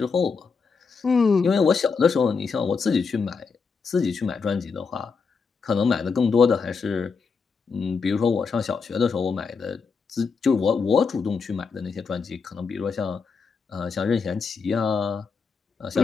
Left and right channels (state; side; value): quieter; right; 5.2 dB